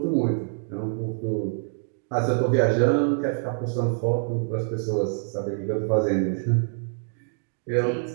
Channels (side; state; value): left; silent; digital silence